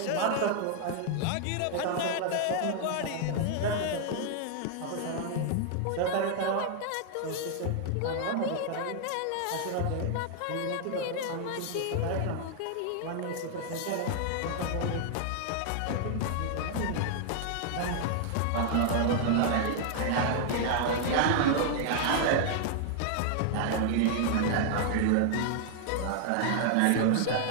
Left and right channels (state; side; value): different; both; correlation 0.00